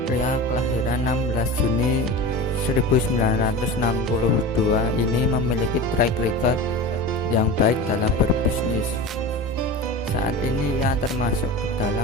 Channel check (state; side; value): normal; both; correlation 0.30